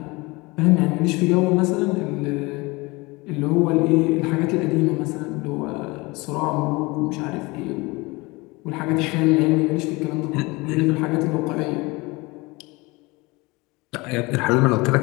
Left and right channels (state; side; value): quieter; right; 24.1 dB